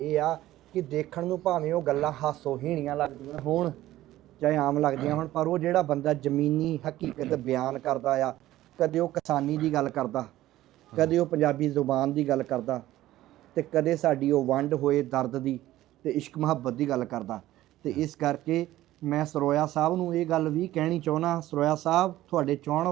ਆ ਕਿ ਦੇਖਣ ਨੂੰ ਭਾਵੇਂ ਉਹ ਗੱਲਾਂ ਹਾਸੋਹੀਣੀਆਂ ਲੱਗਦੀਆਂ ਹੋਣ ਚਾਹੇ ਆਮ ਲੱਗਦੀਆਂ ਹੋਣ, ਪਰ ਉਹ ਜਿਹੜਾ ਬੰਦਾ ਜ਼ਮੀਨੀ ਹਕੀਕਤ ਬਿਆਨ ਕਰਦਾ ਆ, ਕਦੇ ਉਹ ਕਿਸਾਨੀ ਦੀ ਗੱਲ ਕਰਦਾ, ਕਦੇ ਉਹ ਪੰਜਾਬੀ ਜ਼ੁਬਾਨ ਦੀ ਗੱਲ ਕਰਦਾ, ਤੇ ਕਦੇ ਸਾਡੀ ਉਹ ਵੰਡ ਹੋਏ ਦਰਦ ਦੀ ਤੇ ਇਸ਼ਕ ਮੁਹੱਬਤ ਦੀ ਗੱਲ ਕਰਦਾ। ਤੇ ਇਸ ਕਰਕੇ ਮੈਂ ਸਰੋਇਆ ਸਾਹਿਬ ਨੂੰ ਇਹ ਗੱਲ ਵੀ ਕਹਿਣੀ ਚਾਹੁੰਦਾ, ਸਰੋਇਆ ਸਾਹਿਬ ਤੁਹਾਡੇ ਚਾਹੁਣ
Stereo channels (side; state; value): left; quieter; 15.0 dB